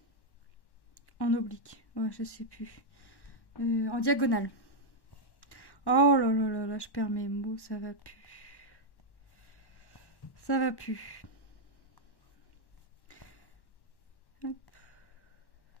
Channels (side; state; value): right; late; 1.1 ms